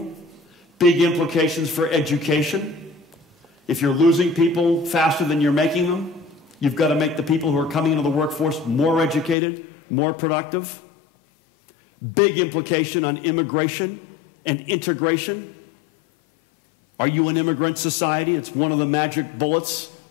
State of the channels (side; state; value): right; drops out; at 9.3 s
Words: Big implications for education. If you're losing people faster than you're making them, you've got to make the people who are coming into the workforce more educated, more productive. Big implication on immigration and integration. Are you an immigrant society? It's one of the magic bullets.